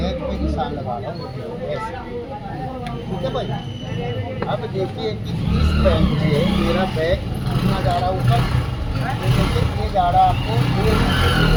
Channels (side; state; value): both; identical; correlation 1.00